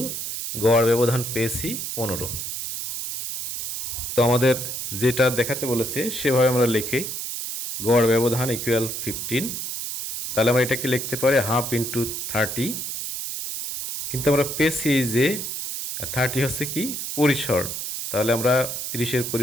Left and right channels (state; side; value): noise; right; hiss, 4 dB below the sound